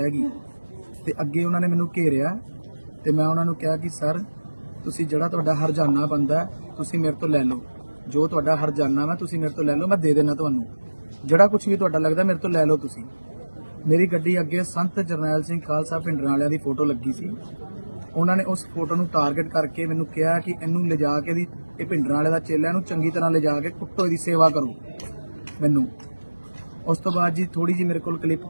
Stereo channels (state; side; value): inverted; both; correlation -1.00